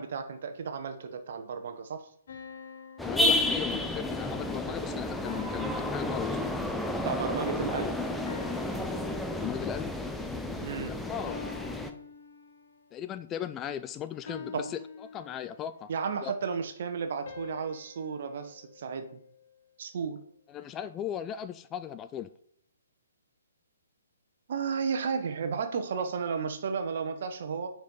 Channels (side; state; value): both; normal; correlation 0.02